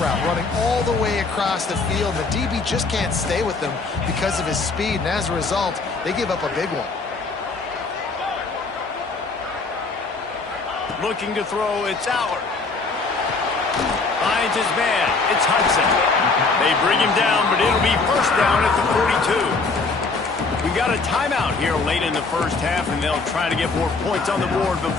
route, running all the way across the field. The DB just can't stay with them because of his speed, and as a result, they give up a big one. Looking to throw, it's Allard. Finds his man, it's Hudson. They bring him down, but it'll be first down at the 42. We got a timeout here late in the first half, and they'll try to get more points on the board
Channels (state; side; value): quieter; right; 4.0 dB